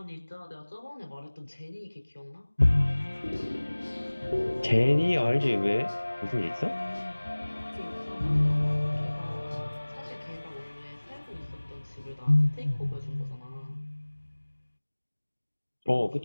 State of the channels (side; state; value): both; inverted; correlation -1.00